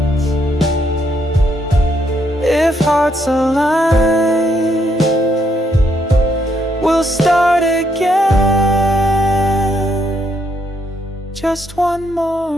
if hearts align, we'll start again just one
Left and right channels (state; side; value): normal; both; correlation 0.74